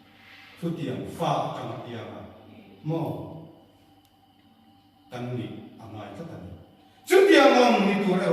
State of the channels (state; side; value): identical; both; correlation 1.00